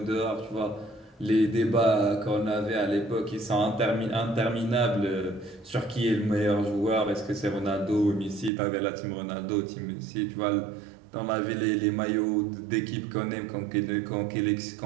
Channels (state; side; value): drops out; left; at 8.5 s